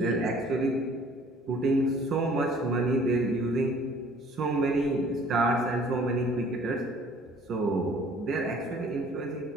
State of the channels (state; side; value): normal; both; correlation 0.54